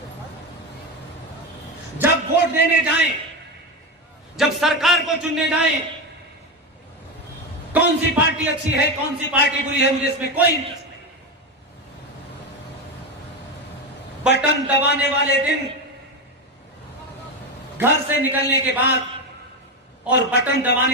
जब वोट देने जाएं, जब सरकार को चुनने जाएं, कौन सी पार्टी अच्छी है कौन सी पार्टी बुरी है मुझे इसमें कोई इंटरेस्ट नहीं। बटन दबाने वाले दिन, घर से निकलने के बाद और बटन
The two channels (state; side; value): normal; both; correlation 0.15